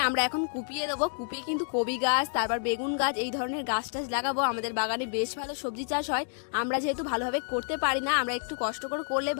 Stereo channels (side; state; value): right; silent; 58 dB below the other